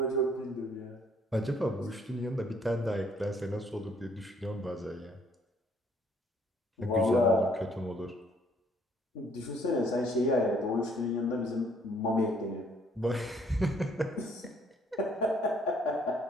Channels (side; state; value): both; normal; correlation 0.64